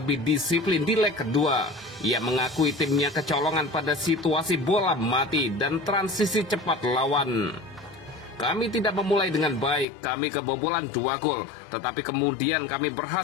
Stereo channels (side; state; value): right; drops out; at 9.9 s